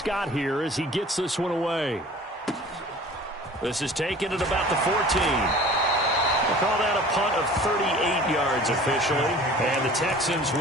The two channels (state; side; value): normal; both; correlation 0.45